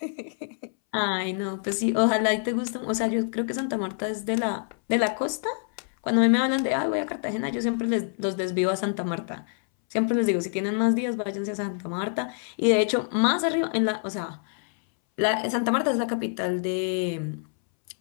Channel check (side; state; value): right; silent; 61 dB below the other